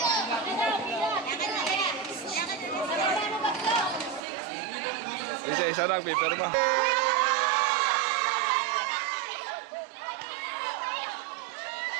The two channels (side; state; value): left; drops out; at 4.2 s